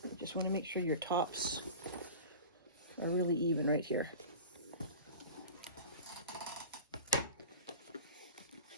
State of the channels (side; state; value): both; inverted; correlation -0.36